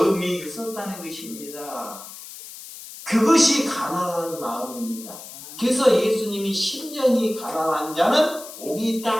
있었다는 것입니다. 그것이 가난한 마음입니다. 그래서 예수님이 심령이 가난한 자는 복이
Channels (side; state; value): left; noise; hiss, 14 dB below the sound